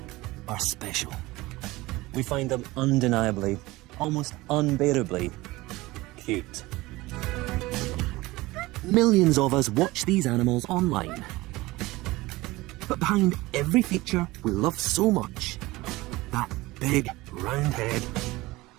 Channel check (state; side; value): quieter; left; 20.0 dB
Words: are special. We find them undeniably, almost unbearably cute. Millions of us watch these animals online. But behind every feature we love so much, that big round head,